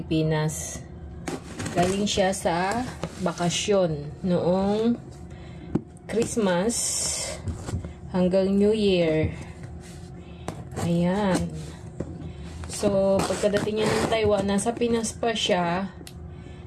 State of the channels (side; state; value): both; identical; correlation 1.00